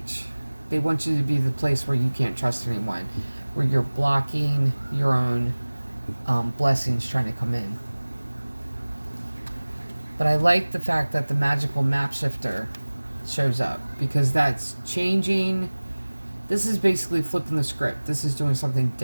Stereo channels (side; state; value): both; inverted; correlation -1.00